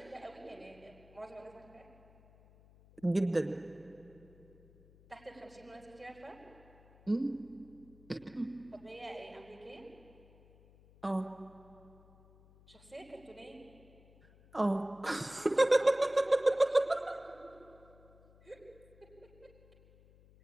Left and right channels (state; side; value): noise; left; hum, 25 dB below the sound